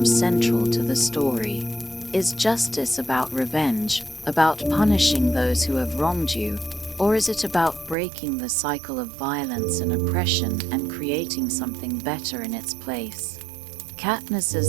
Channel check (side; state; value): left; drops out; at 8.0 s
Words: central to the story. Is justice about revenge, about punishing those who have wronged you, or is it about breaking the cycle of violence and oppression and creating something better in its place?